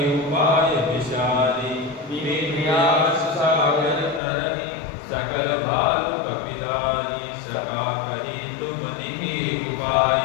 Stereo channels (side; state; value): right; drops out; at 4.2 s